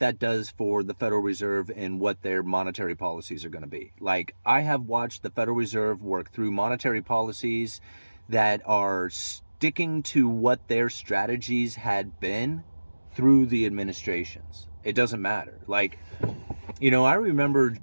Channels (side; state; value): both; inverted; correlation -1.00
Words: that does for the Federal Reserve and what their monetary policies are going to be. Like, I have watched the Federal Reserve work through monetary policies that are sticking to what their strategies had been through the administrations. It doesn't matter. Like, I remember